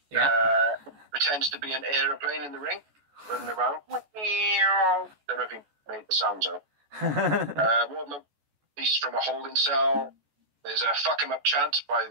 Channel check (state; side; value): late; left; 14 ms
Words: Yeah. Pretends to be an aeroplane in the ring, running around. Don't know if he made the sounds out. Wardlow released from a holding cell. There's a fuck him up chant by